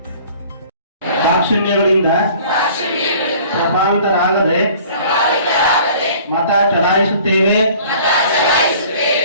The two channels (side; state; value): both; inverted; correlation -0.50